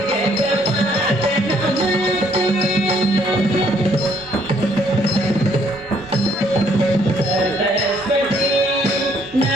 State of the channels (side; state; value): both; normal; correlation 0.66